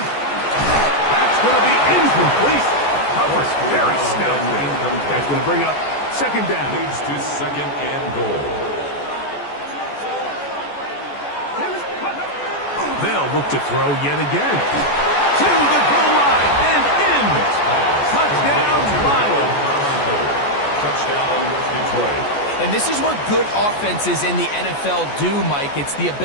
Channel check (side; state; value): right; late; 14 ms